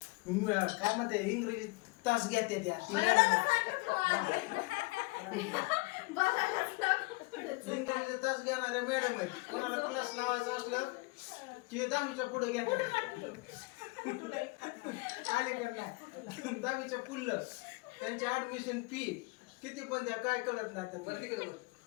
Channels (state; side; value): quieter; right; 25.8 dB